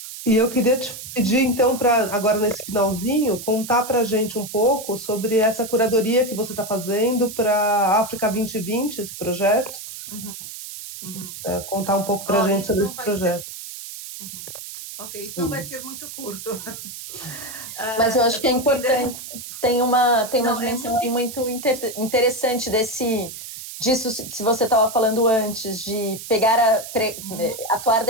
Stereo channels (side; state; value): right; noise; hiss, 11 dB below the sound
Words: E eu queria te pedir, então, para agora nesse finalzinho, contar para a gente um pouco sobre essa curadoria que você está fazendo para a África 2020, esse projeto. Contar um pouco para a gente sobre esse projeto. Ok, isso não vai ser muito curto. Mas eu acho que é importante. Tem uma dimensão aí muito interessante disso que você estava falando antes, de atuar